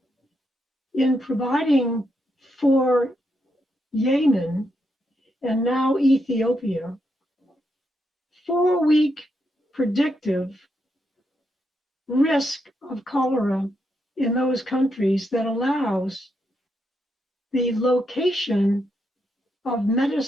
in providing for Yemen and now Ethiopia 4-week predictive risk of cholera in those countries that allows the location of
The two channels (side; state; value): both; normal; correlation 0.81